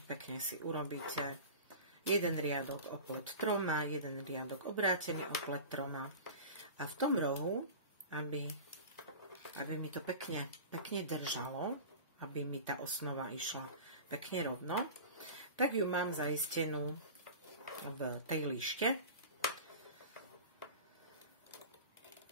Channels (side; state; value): both; inverted; correlation -0.34